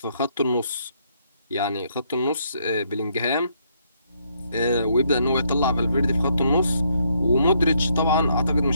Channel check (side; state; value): both; inverted; correlation -0.73